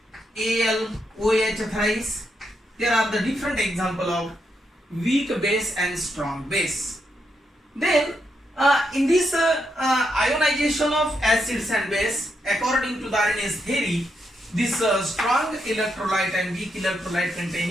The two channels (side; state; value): both; normal; correlation 0.81